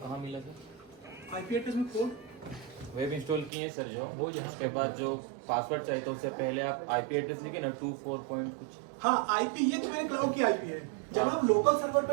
मिला था? आईपी एड्रेस में कोड वेब इंस्टॉल किए सर जो वो, उसके बाद जो पासवर्ड चाहिए था उससे पहले आप आईपी एड्रेस लिखे ना 24 पॉइंट कुछ. हाँ, आईपी ये तो मेरे क्लाउड की आईपी है. जब आप लोकल सर्वर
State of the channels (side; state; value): left; drops out; at 3.5 s